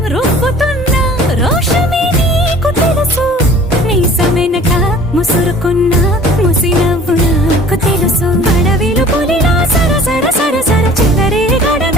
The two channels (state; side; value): normal; both; correlation 0.48